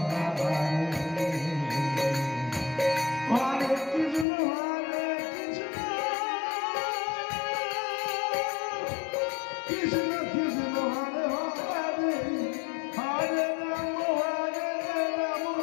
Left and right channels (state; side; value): drops out; right; at 4.2 s